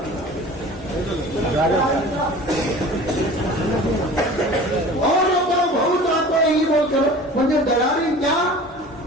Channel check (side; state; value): both; normal; correlation 0.41